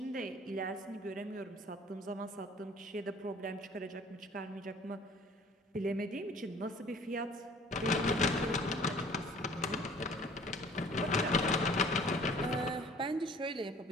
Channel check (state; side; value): normal; both; correlation 0.52